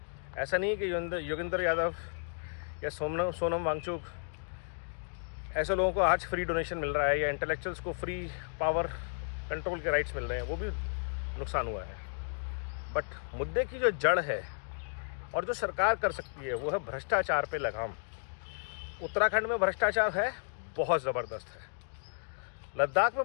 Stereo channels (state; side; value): silent; right; digital silence